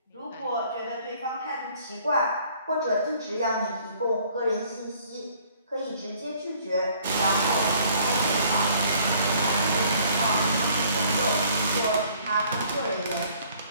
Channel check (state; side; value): inverted; both; correlation -0.58